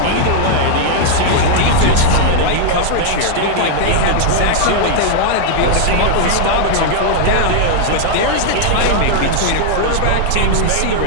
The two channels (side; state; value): both; different; correlation -0.01